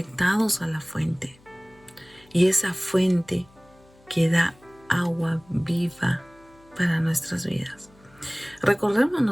a la fuente. Y esa fuente que da agua viva para nuestras vidas.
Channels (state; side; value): noise; left; hum, 28 dB below the sound